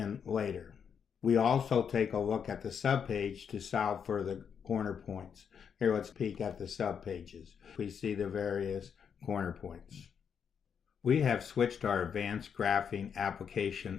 later. We also take a look at the subpage to solve for the corner points. Here, let's peek at the subpages. We see the various corner points. We have switched our advanced graphing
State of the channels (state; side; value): quieter; right; 7.2 dB